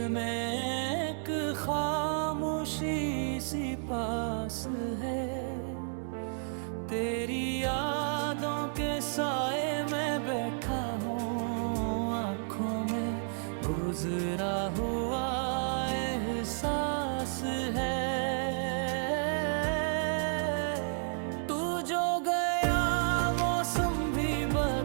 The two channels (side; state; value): left; silent; digital silence